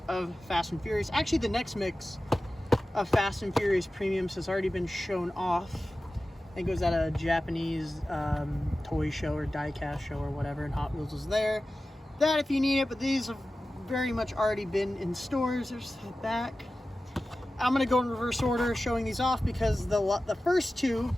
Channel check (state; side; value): normal; both; correlation 0.95